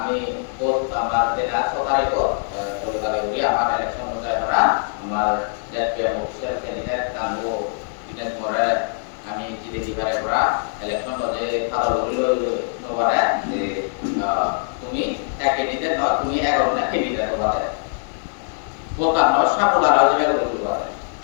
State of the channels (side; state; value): right; silent; digital silence